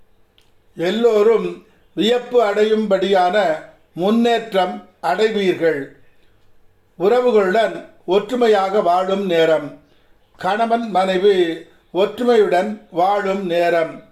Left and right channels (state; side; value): identical; both; correlation 1.00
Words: எல்லோரும் வியப்பு அடையும்படியான முன்னேற்றம் அடைவீர்கள். உறவுகளுடன் ஒற்றுமையாக வாழும் நேரம். கணவன் மனைவி ஒற்றுமையுடன் வாழும் நேரம்.